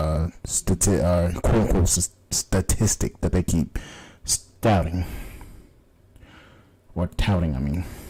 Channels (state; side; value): identical; both; correlation 1.00